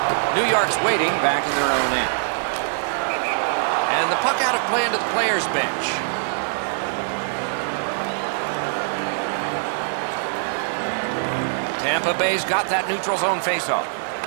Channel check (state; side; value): silent; left; digital silence